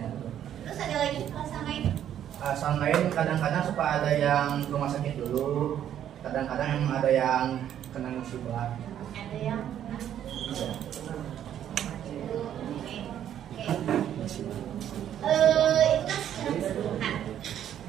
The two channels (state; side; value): quieter; left; 10.4 dB